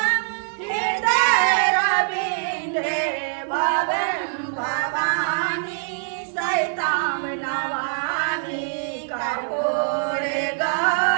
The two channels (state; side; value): silent; left; 63 dB below the other